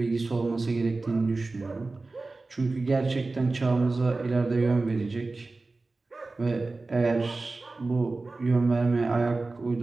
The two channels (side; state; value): left; quieter; 3.4 dB